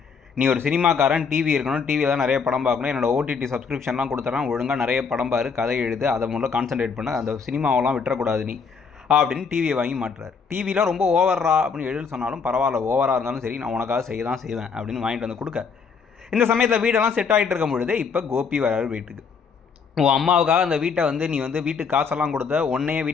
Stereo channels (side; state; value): right; quieter; 5.7 dB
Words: நீ ஒரு சினிமாக்காரன், டிவி இருக்கணும், டிவியில் தான் நிறைய படம் பார்க்கணும், என்னோட ஓடிடி சப்ஸ்கிரிப்ஷன்லாம் கொடுத்துட்றான், ஒழுங்காக நிறைய படம் பாரு, கதை எழுது, அதை மூலம் கான்சன்ட்ரேட் பண்ண, அந்த சினிமாவெல்லாம் விட்டுறக்கூடாது நீ அப்படின்னு டிவியை வாங்கி மாட்டுறாரு. டிவிலாம் ரொம்ப ஓவரா அப்படின்னு எழுதி சொன்னாலும் பரவாயில்ல, ஓவராக இருந்தாலும் சரி நான் உனக்காக செய்ய தான் செய்வேன் அப்படின்னு வாங்கிட்டு வந்து கொடுக்க. இந்த சமயத்தில் வீடெல்லாம் செட் ஆகிட்டு இருக்கும் பொழுது இப்போ கோபி வராரு வீட்டுக்கு. உன் அம்மாவுக்காக அந்த வீட்டை வந்து நீ வந்து வீட்டுக்கு காசெல்லாம் கொடுத்த, உன்னையே